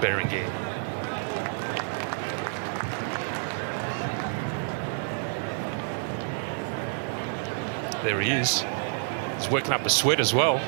There he is. He's working up a sweat as well.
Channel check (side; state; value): left; silent; digital silence